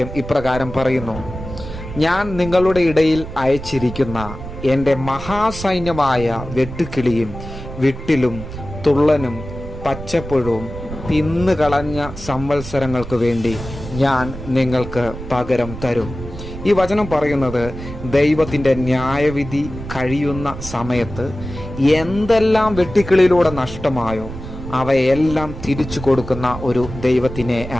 ഇപ്രകാരം പറയുന്നു: ഞാൻ നിങ്ങളുടെ ഇടയിൽ അയച്ചിരിക്കുന്ന എൻ്റെ മഹാസൈന്യമായ വെട്ടുക്കിളിയും വിട്ടിലും തുള്ളനും പച്ചപ്പുഴവും തിന്നുകളഞ്ഞ സംവത്സരങ്ങൾക്ക് വേണ്ടി ഞാൻ നിങ്ങൾക്ക് പകരം തരും. ഈ വചനം പറയുന്നത് ദൈവത്തിൻ്റെ ന്യായവിധി കഴിയുന്ന സമയത്ത് എന്തെല്ലാം വെട്ടുക്കിളിയിലൂടെ നഷ്ടമായോ അവയെല്ലാം തിരിച്ചു കൊടുക്കുന്ന ഒരു ദൈവത്തിനെ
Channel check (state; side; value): noise; right; rumble, 10 dB below the sound